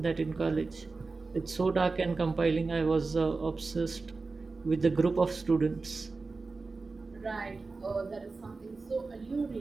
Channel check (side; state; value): left; quieter; 4.0 dB